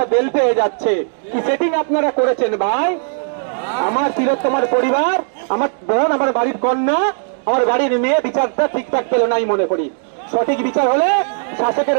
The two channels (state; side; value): silent; left; digital silence